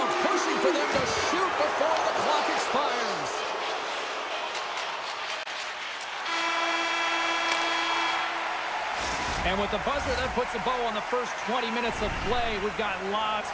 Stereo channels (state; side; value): identical; both; correlation 1.00